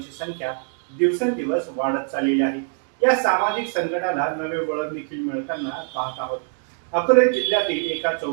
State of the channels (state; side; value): silent; left; 61 dB below the other